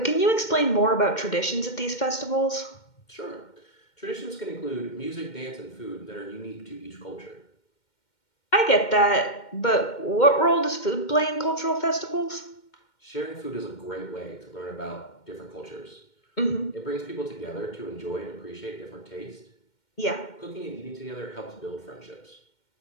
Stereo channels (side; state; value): right; late; 2.1 ms